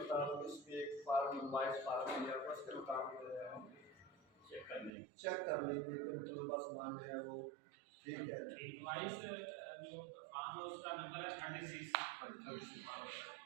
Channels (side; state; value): left; drops out; at 4.9 s